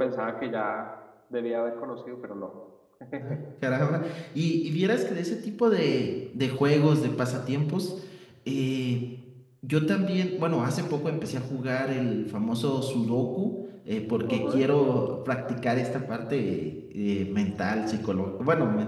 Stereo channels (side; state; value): both; identical; correlation 1.00